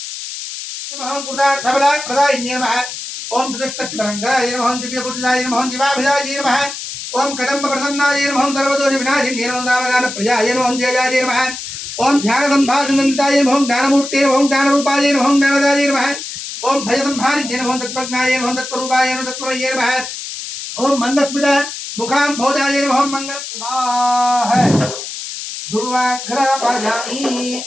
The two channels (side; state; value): left; noise; hiss, 8 dB below the sound